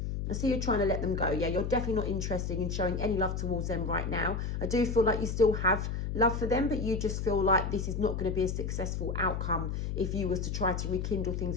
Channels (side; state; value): left; noise; hum, 2 dB below the sound